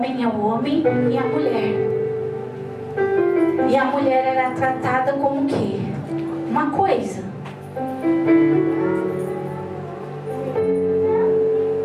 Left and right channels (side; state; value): both; identical; correlation 1.00